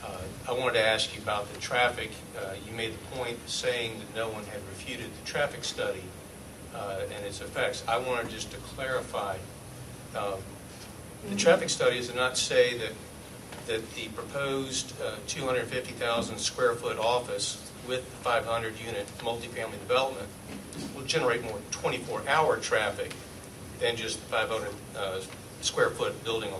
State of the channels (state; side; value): identical; both; correlation 1.00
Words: I wanted to ask you about the traffic. You made the point saying that no one had refuted the traffic study and its effects. I wanted just to clarify, the traffic studies do not say that the proposed 250,000 square foot office with 500 unit multifamily development will generate more 24-hour traffic than just the 500 square foot building